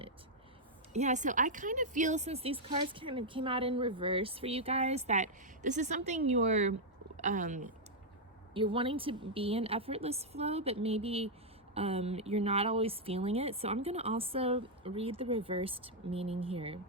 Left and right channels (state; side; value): normal; both; correlation -0.03